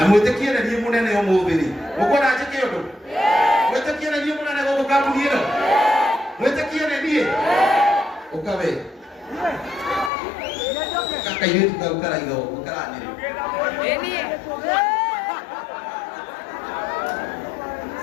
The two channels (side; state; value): right; drops out; at 10.1 s